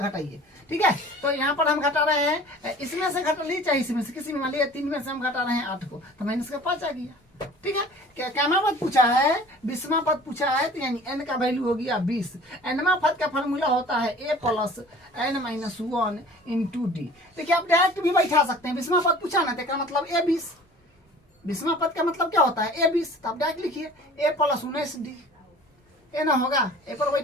ठीक है। तो यहाँ पर हम घटा रहे हैं, इसमें से घटा लीजिए चाहे इसमें से, किसी में मान लीजिए 3 में से हम घटा रहे हैं 8 को, तो माइनस का 5 आ गया, ठीक है। क्या पद पूछा है, 20वां पद पूछा है, तो यानी n का वैल्यू हो गया 20। nवां पद का फॉर्मूला होता है a + n - 1 × d। देखिए आप डायरेक्ट भी बैठा सकते हैं, 20वां पद पूछा ना, तो इसका मतलब a 20, 20वां पद का मतलब क्या होता है a 20, तो आप डायरेक्ट लिखिए a + 19d, ए ना होगा, ए पर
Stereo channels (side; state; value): both; normal; correlation 0.46